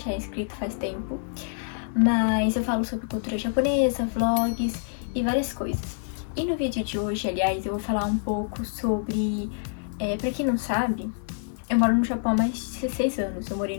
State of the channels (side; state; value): right; silent; 59 dB below the other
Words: é inscrito faz tempo. Mas eu falo sobre cultura japonesa, vlogs e várias coisas. E no vídeo de hoje, aliás, eu vou falar um pouco sobre... pra quem não sabe, eu moro no Japão há mais de 16 anos. Eu morei